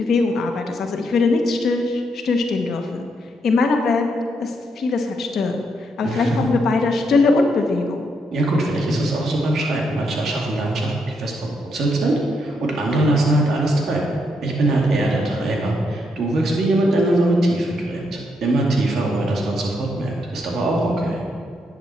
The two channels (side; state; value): both; normal; correlation 0.78